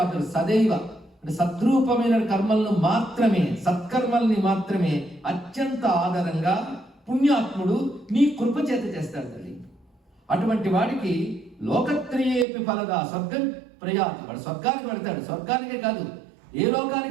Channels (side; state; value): left; drops out; at 12.5 s